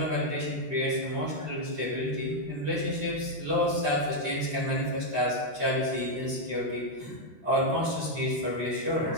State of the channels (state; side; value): late; left; 13 ms